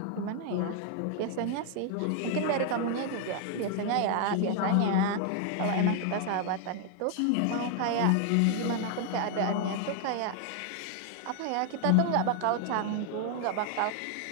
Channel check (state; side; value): different; both; correlation 0.00